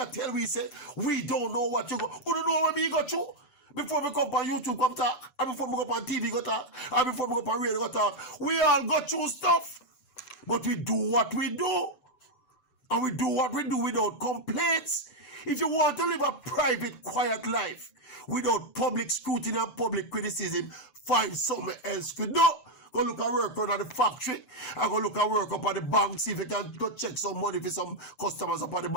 tell we say, we don't know what you go. You don't know what me go through. Before we come on YouTube, come talk, and before we go on TV, go talk, and before we go on radio, go talk. We all go through stuff. But we do what we do. And we do what we do without complaints. If you want to live a private, quiet life without public scrutiny and public criticism, find somewhere else to do. Go look at work around at the factory. And go look at work up at the bank, see if you can go check some money for some customers up at the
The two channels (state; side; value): late; right; 6.9 ms